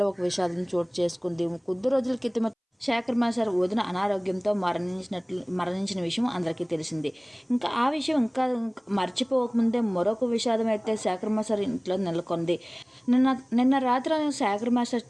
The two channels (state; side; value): identical; both; correlation 1.00